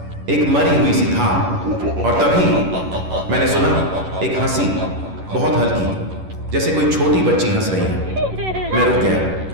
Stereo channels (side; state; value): left; late; 11 ms